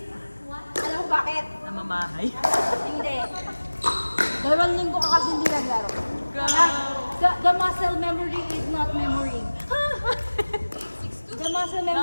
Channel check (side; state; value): both; inverted; correlation -1.00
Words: Alam mo bakit? namamahay. Hindi. 2 linggo ka kasi hindi naglaro. Grabe. The muscle memory is not memorying. The muscle